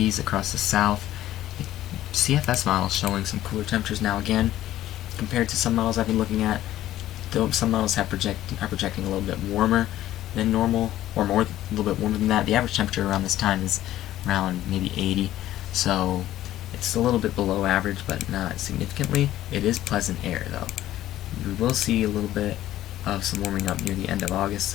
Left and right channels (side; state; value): right; quieter; 13.7 dB